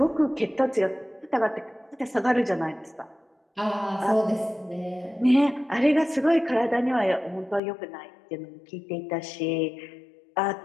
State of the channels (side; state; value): right; drops out; at 7.6 s